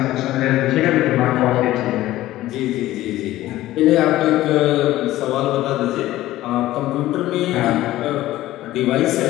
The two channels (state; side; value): quieter; right; 15.5 dB